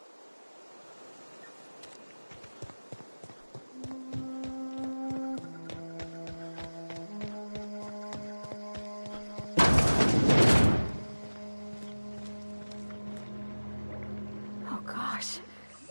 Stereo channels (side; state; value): both; inverted; correlation -1.00